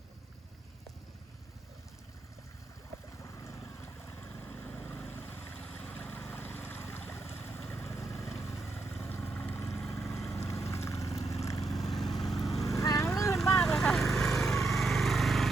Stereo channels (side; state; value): left; quieter; 3.3 dB